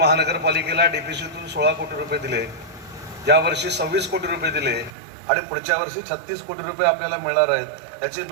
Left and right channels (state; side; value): drops out; left; at 4.9 s